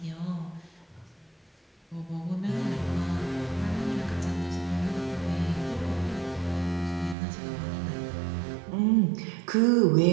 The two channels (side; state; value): left; drops out; at 7.2 s